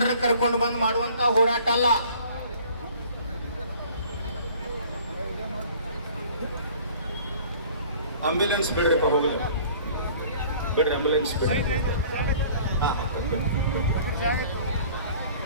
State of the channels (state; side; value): inverted; both; correlation -0.50